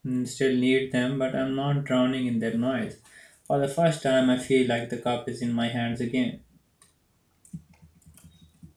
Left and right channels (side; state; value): both; identical; correlation 1.00